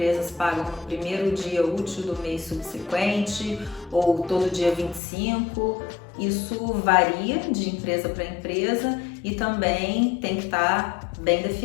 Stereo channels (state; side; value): drops out; right; at 5.0 s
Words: pagam no primeiro dia útil do mês subsequente ou todo dia 25. Isso varia de empresa para empresa e também tem que estar bem